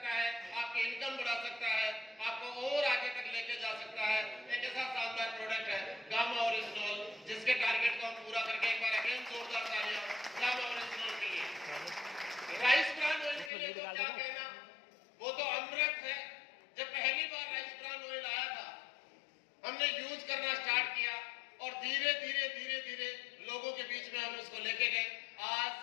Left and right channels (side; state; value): right; drops out; at 13.5 s